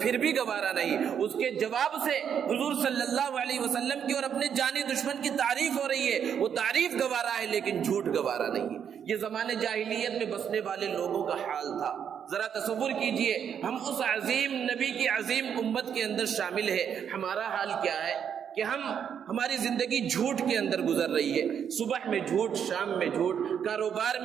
بھی گوارا نہیں۔ اس کے جواب سے حضور صلی اللہ علیہ وسلم کی اور اپنے جانی دشمن کی تعریف ہو رہی ہے، وہ تعریف گوارا ہے لیکن جھوٹ گوارا نہیں ہے۔ یہ زمانے جاہلیت میں بسنے والے لوگوں کا حال تھا۔ ذرا تصور کیجئے ہم اس عظیم نبی کی عظیم امت کے اندر شامل ہے، ہمارا حال کیا ہے کہ ہماری زندگی جھوٹ کے اندر گزر رہی ہے۔ صبح میں جھوٹ، شام میں جھوٹ، کاروبار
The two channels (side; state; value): left; quieter; 8.1 dB